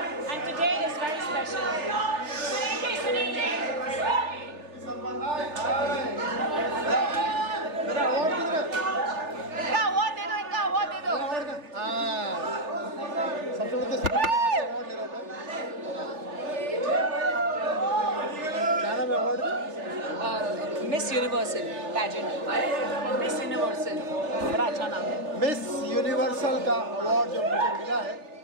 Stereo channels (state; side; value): late; left; 3.3 ms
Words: and today is very special. Sunil Miss Universal pageant. Miss Universal, बड़ा अच्छा नाम है। मिस यूनिवर्सल का अवार्ड जो मुझे मिला है,